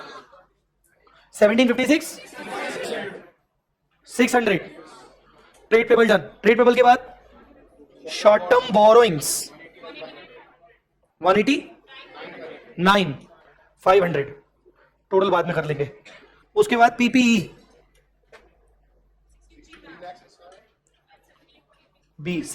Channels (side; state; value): both; identical; correlation 1.00